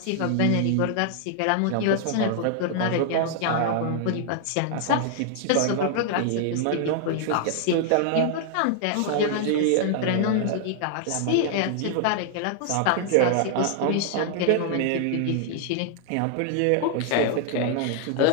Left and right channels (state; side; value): different; both; correlation 0.00